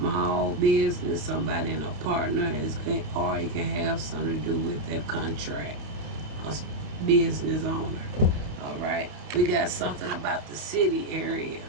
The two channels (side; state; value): left; late; 29 ms